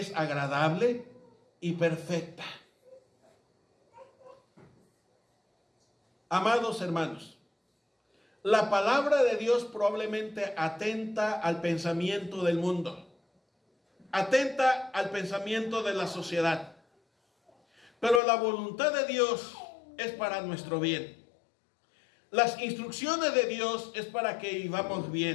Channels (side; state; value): right; drops out; at 18.2 s